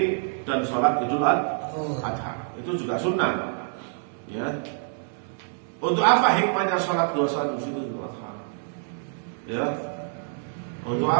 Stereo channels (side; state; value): left; silent; digital silence